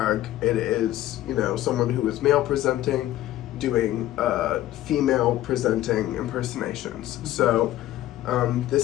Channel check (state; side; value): quieter; right; 14.3 dB